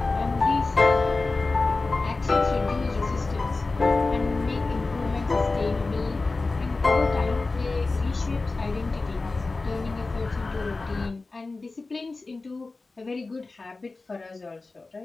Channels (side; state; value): right; quieter; 3.6 dB